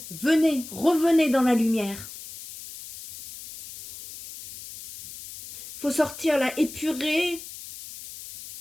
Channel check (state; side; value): noise; left; hiss, 14 dB below the sound